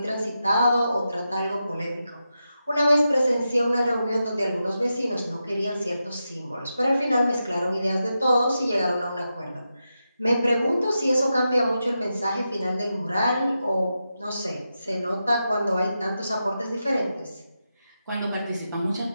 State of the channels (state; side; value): inverted; both; correlation -0.89